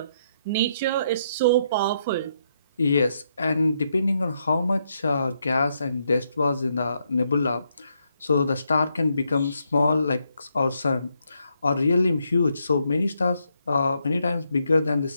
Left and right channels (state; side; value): inverted; both; correlation -0.77